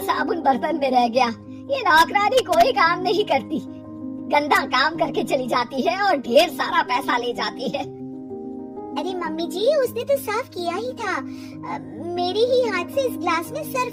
साबुन बर्तन में रह गया। ये नौकरानी कोई काम नहीं करती, गंदा काम करके चली जाती है और ढेर सारा पैसा ले जाती है। अरे मम्मी जी, उसने तो साफ किया ही था। मेरे ही हाथ से इस ग्लास में सर्फ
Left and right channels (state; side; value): identical; both; correlation 1.00